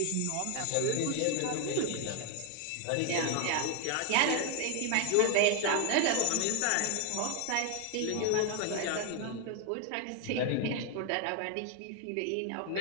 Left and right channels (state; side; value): different; both; correlation 0.00